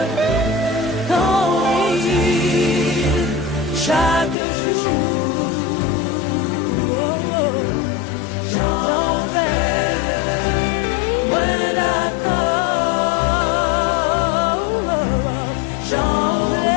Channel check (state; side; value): drops out; right; at 4.4 s